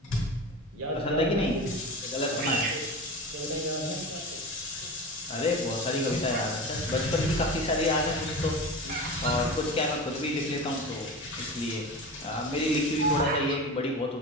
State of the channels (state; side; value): normal; both; correlation 0.29